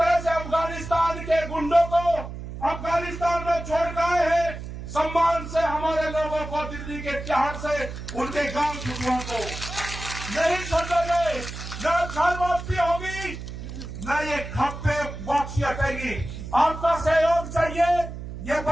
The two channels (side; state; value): right; noise; hum, 9 dB below the sound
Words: से अफगानिस्तान के गुंडों को अफगानिस्तान में छोड़ कर आए हैं, सम्मान से हमारे लोगों को दिल्ली के तिहाड़ से उनके गांव छुटुओं को नहीं छोड़ेंगे। न घर वापसी होगी, न ये खप्पे वापसी हटेगी। आपका सहयोग चाहिए। ये